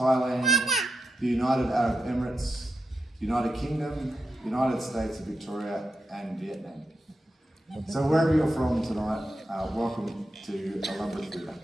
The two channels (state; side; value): normal; both; correlation 0.87